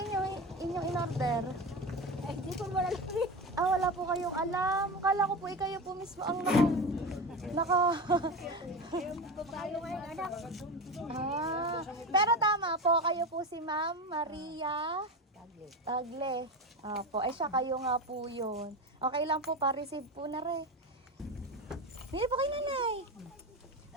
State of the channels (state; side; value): normal; both; correlation 0.22